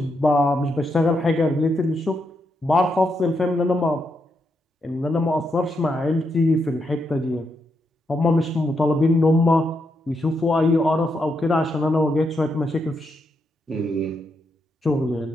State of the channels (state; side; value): normal; both; correlation 0.81